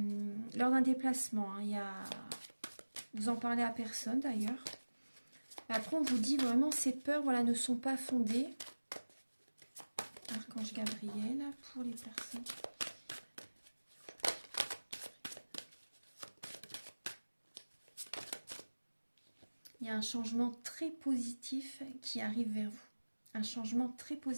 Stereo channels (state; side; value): inverted; both; correlation -1.00